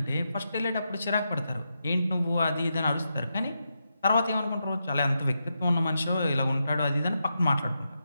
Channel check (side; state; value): both; inverted; correlation -0.85